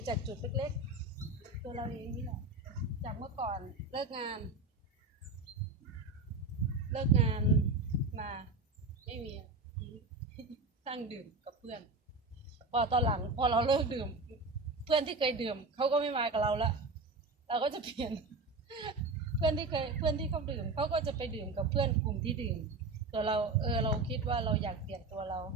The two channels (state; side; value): quieter; left; 3.4 dB